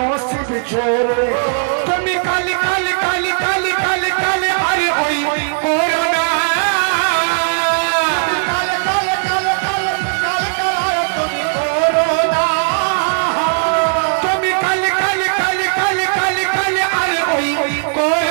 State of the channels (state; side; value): silent; left; digital silence